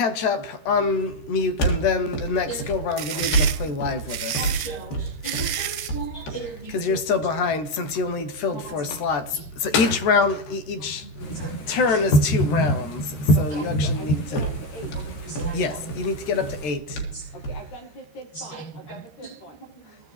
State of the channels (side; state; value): right; late; 13 ms